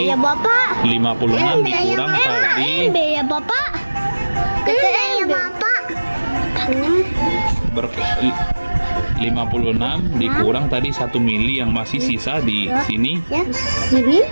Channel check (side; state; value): both; inverted; correlation -1.00